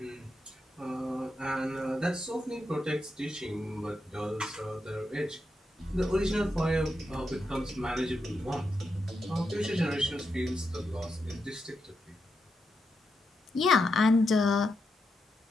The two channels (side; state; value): both; normal; correlation 0.85